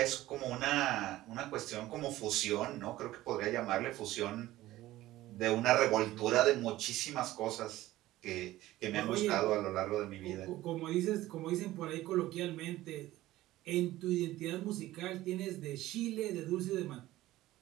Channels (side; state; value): left; quieter; 16.1 dB